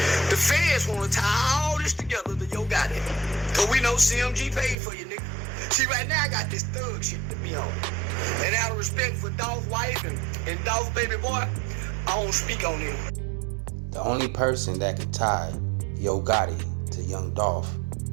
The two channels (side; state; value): left; drops out; at 4.8 s